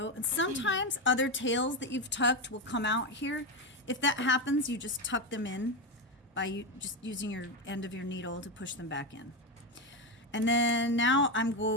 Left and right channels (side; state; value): both; normal; correlation 0.12